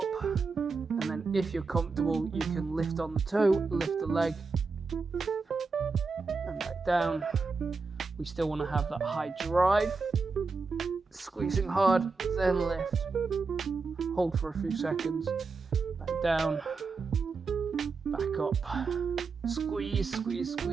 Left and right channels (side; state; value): left; quieter; 4.4 dB